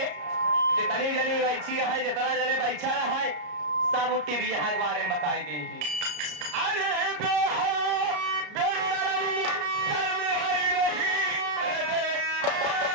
जितनी जनी बैठी है जितना जने बैठा है सब उठी भी यहाँ के बारे में बताई दी अरे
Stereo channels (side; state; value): left; late; 33 ms